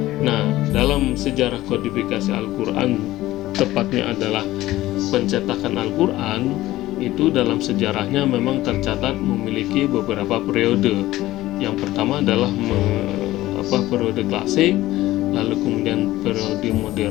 Nah, dalam sejarah kodifikasi Al-Quran, tepatnya adalah pencetakan Al-Quran, itu dalam sejarahnya memang tercatat memiliki beberapa periode. Yang pertama adalah periode klasik, lalu kemudian periode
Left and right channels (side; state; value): right; quieter; 16.3 dB